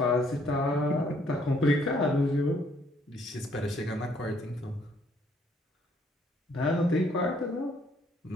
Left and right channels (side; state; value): both; normal; correlation 0.66